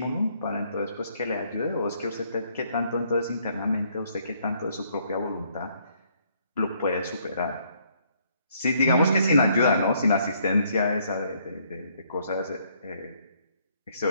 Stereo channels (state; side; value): inverted; both; correlation -0.68